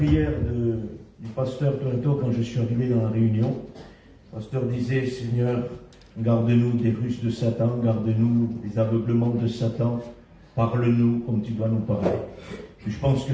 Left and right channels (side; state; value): both; identical; correlation 1.00